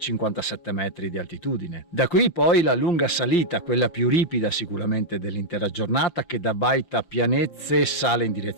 metri di altitudine. Da qui poi la lunga salita, quella più ripida sicuramente dell'intera giornata, che da Baita Pianezze sale in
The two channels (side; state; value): right; late; 5.7 ms